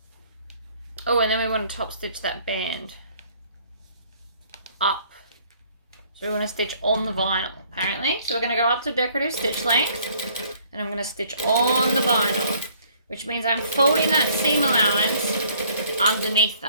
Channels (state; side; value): inverted; both; correlation -0.60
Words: Oh, and then we want to top stitch that band up. So we want to stitch on the vinyl, apparently. So we're going to go up to decorative stitch length, and I'm going to stitch on the vinyl, which means I'm folding that seam allowance underneath